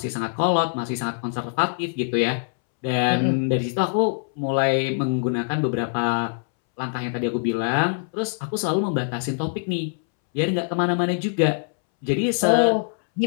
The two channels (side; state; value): right; silent; 63 dB below the other